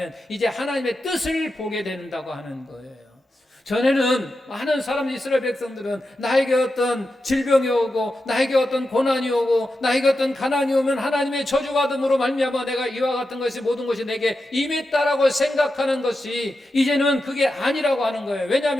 이제 하나님의 뜻을 보게 된다고 하는 거예요. 전에는 많은 사람, 이스라엘 백성들은 나에게 어떤 질병이 오고 나에게 어떤 고난이 오고 나에게 어떤 가난이 오면 하나님의 저주받음으로 말미암아 내가 이와 같은 것이 모든 것이 내게 임했다라고 생각하는 것이 이제는 그게 아니라고 하는 거예요.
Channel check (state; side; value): normal; both; correlation 0.90